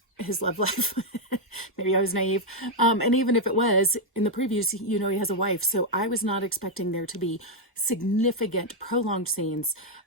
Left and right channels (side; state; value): both; normal; correlation 0.00